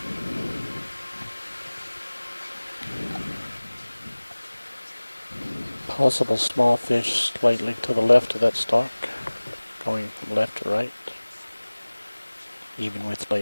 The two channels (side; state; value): both; inverted; correlation -1.00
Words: Possible small fish slightly to the left of that stock, going from left to right, even with